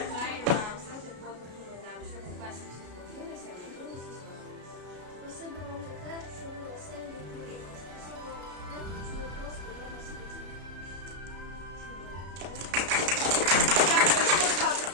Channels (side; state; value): left; late; 33 ms